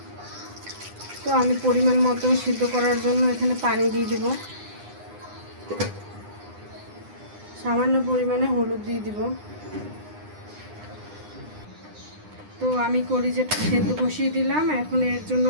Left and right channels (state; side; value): late; left; 9.8 ms